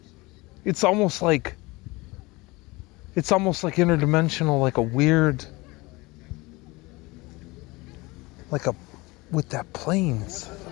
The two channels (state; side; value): quieter; right; 23.1 dB